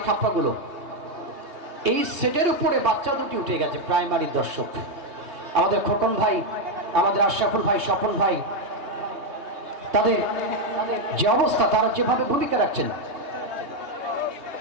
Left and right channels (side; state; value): left; late; 3.0 ms